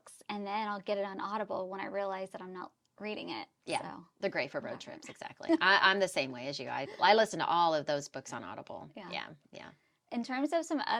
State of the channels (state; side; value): identical; both; correlation 1.00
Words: and then I'll get it on Audible when I realize that I'm not reading it. Yeah, so. they're great for road trips. Exactly. I'm the same way as you. I listen to all of those books on Audible. Yeah. In terms of some